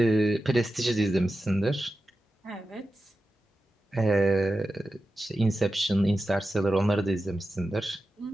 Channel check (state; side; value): normal; both; correlation 0.92